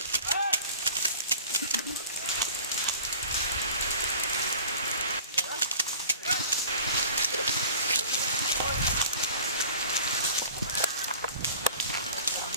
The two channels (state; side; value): inverted; both; correlation -0.43